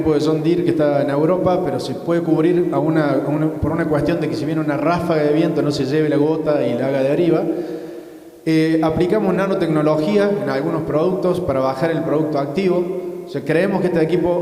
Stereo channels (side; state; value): both; identical; correlation 1.00